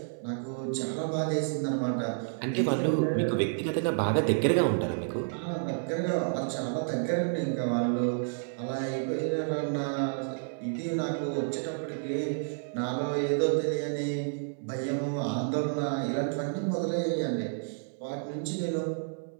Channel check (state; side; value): silent; left; 58 dB below the other